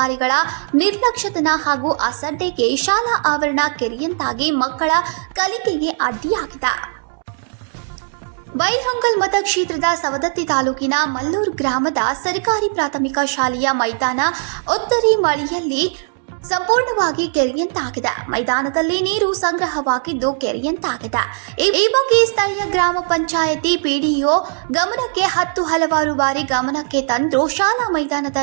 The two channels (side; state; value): left; silent; digital silence